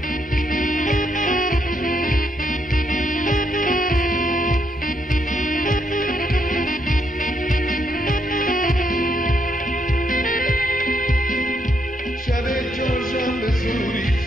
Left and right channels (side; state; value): both; normal; correlation 0.75